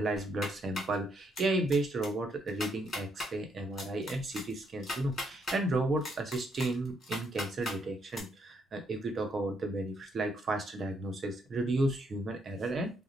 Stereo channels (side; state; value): both; normal; correlation 0.74